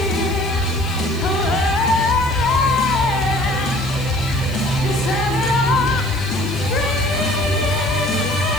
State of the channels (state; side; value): noise; left; hiss, 20 dB below the sound